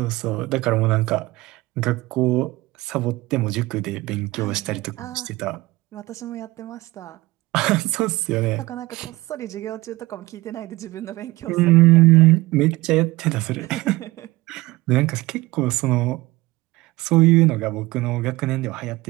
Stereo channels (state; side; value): quieter; left; 20.0 dB